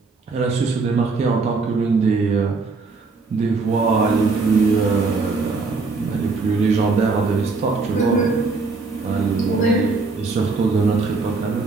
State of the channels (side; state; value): left; quieter; 4.1 dB